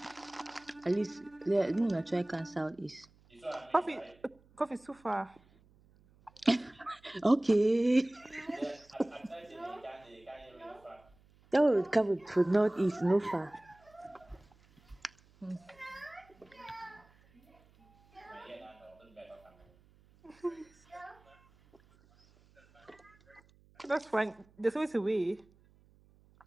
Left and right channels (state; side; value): noise; right; hum, 29 dB below the sound